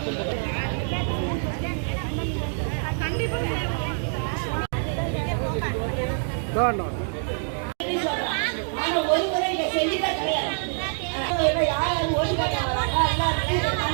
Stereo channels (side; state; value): left; silent; 61 dB below the other